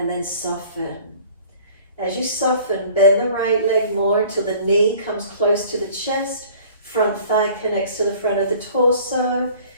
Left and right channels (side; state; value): both; inverted; correlation -0.49